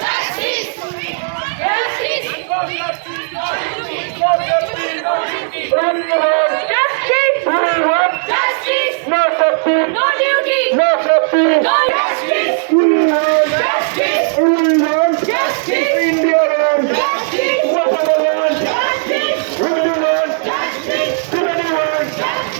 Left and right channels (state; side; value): silent; left; digital silence